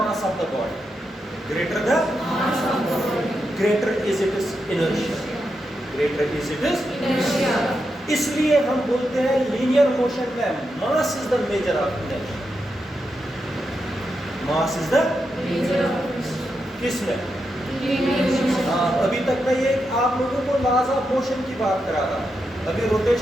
of the body, greater the greater is it is inertia, greater is it is inertia. इसलिए हम बोलते हैं लीनियर मोशन में mass is the measure of inertia. Mass is the measure of किसमें? हाँ, अभी तक मैं ये आप लोगों को लॉज ऑफ मोशन की बात करा रहा, अभी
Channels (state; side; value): normal; both; correlation 0.85